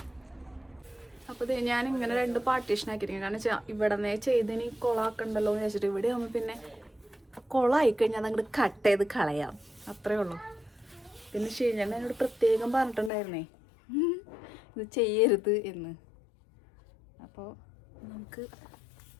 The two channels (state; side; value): drops out; right; at 13.1 s